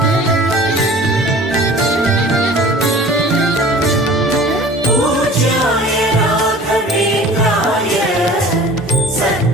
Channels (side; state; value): both; normal; correlation 0.44